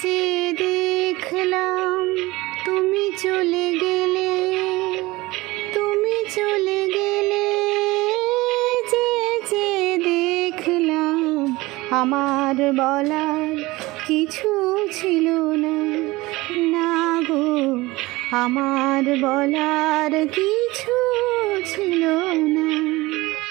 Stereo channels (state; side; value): quieter; left; 20.7 dB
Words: চেয়ে দেখলাম তুমি চলে গেলে, তুমি চলে গেলে। চেয়ে চেয়ে দেখলাম আমার বলার কিছু ছিল না, না গো আমার বলার কিছু ছিল না।